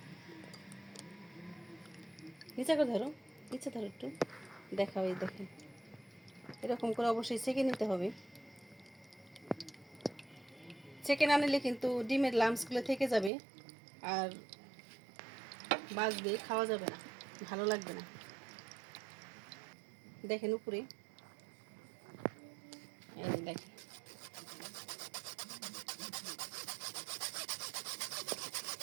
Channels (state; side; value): drops out; left; at 13.3 s